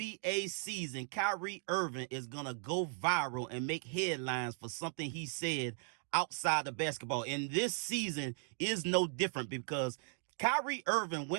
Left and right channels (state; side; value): silent; left; 53 dB below the other